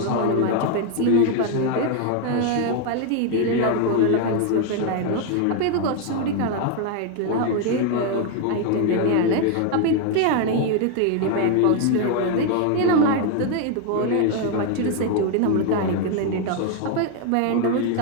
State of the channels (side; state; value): both; different; correlation 0.01